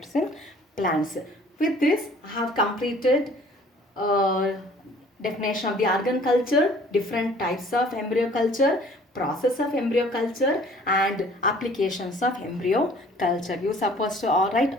in plants. With this, I have completed definition of the organ culture, different types of embryo culture, process of embryo culture, and applications of embryo culture. You supposed to write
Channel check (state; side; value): normal; both; correlation 0.53